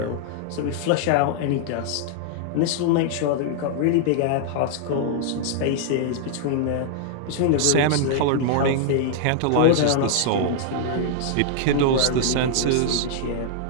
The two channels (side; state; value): both; different; correlation -0.01